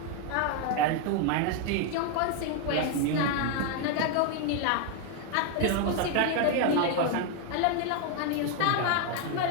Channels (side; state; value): both; different; correlation 0.01